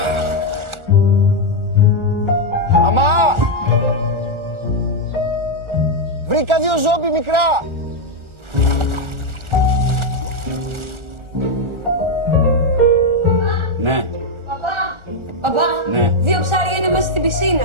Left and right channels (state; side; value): late; left; 1.4 ms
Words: Μαμά! Βρήκα 2 ζόμπι μικρά! Ναι. Παπά, Ναι. 2 ψάρια είναι μέσα στην